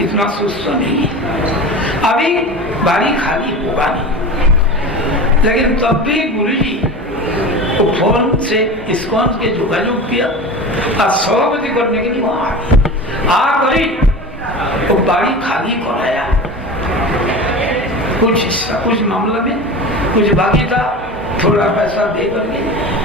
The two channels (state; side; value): normal; both; correlation 0.31